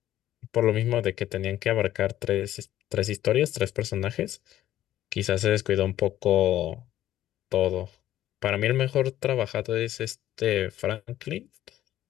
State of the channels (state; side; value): quieter; right; 13.1 dB